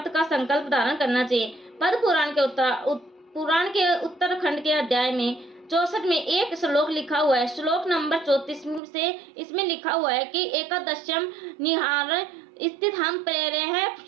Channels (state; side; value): drops out; left; at 8.8 s